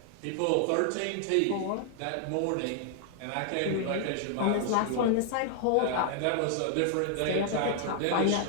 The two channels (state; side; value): different; both; correlation 0.00